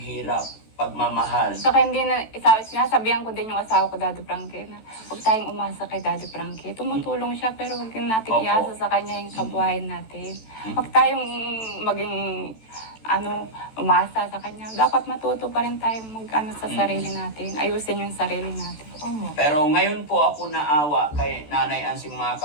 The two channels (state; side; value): late; right; 14 ms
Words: pagmamahal. Saka hindi na, sinasabihan ko din yung asawa ko, Daddy Frankie, na huwag tayong umasa kay Daddy Frankie. Tumutulong siya, pero huwag din natin Opo. iasa sa kanya yung kabuhayan natin. Huwag tayong maging, umasa sa kanya. Dapat matuto pa rin tayong sa sarili natin. Ayusin yung sarili natin. Pero ngayon po ako naawa kay Nanay Ansing, mga